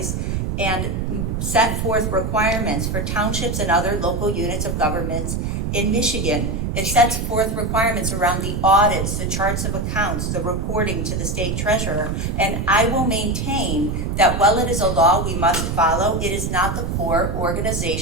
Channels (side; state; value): right; noise; rumble, 1 dB below the sound